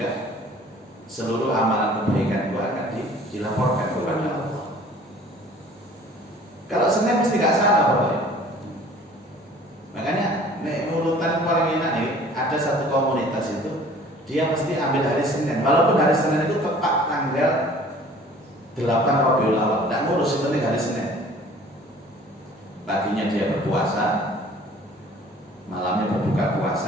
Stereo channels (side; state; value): both; normal; correlation 0.50